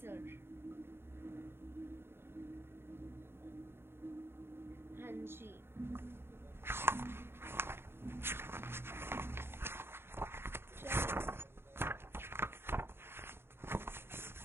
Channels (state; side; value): late; left; 0.11 ms